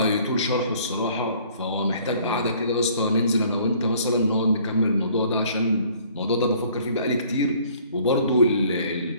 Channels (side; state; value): both; inverted; correlation -0.57